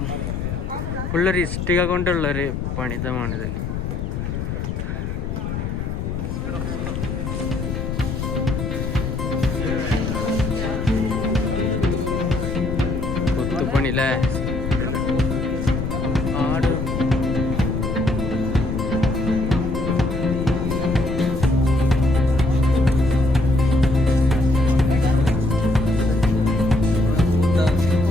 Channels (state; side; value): noise; left; rumble, 4 dB below the sound